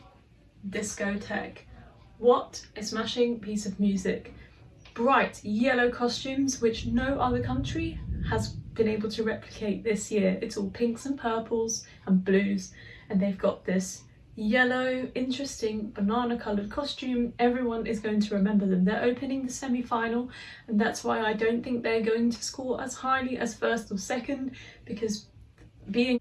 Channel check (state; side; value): identical; both; correlation 1.00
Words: Discotheque. What a smashing piece of music. Bright yellow costumes, which no other country has been able to replicate this year. It's all pinks and purples and blues, and they've got this yellow, interesting banana coloured costume. Everyone is going to remember them. They're opening the semi-final, and that's why I don't think they're going to score as highly as first or second, because being